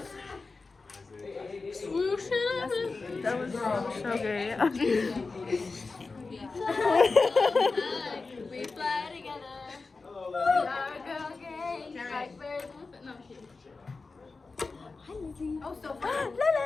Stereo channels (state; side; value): quieter; right; 4.0 dB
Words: Swoosh it. That was so gay. We fly together. We are a girl gang. Like birds with no shit. Hi Lizzie. Oh, so fun.